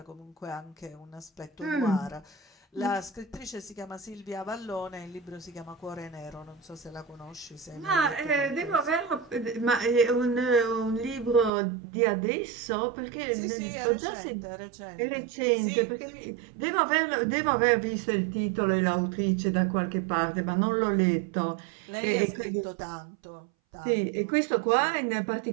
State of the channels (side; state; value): left; drops out; at 11.5 s